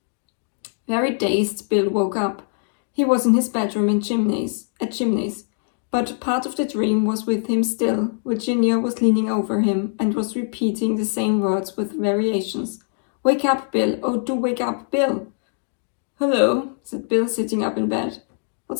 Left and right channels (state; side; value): silent; right; digital silence